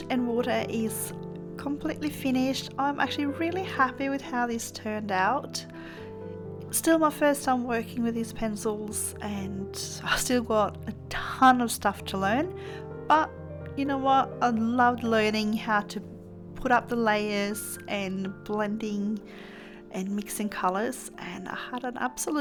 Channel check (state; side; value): identical; both; correlation 1.00